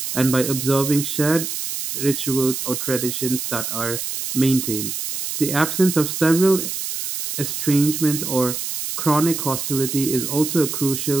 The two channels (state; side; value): noise; right; hiss, 4 dB below the sound